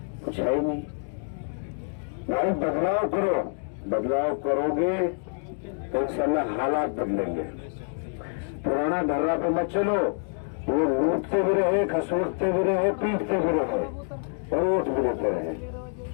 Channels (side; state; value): right; silent; 60 dB below the other